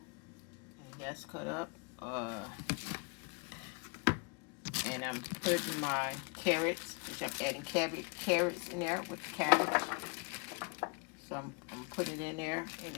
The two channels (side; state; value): right; quieter; 32.4 dB